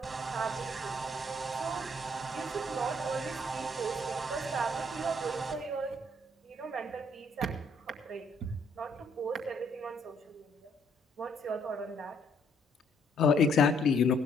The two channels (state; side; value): normal; both; correlation 0.67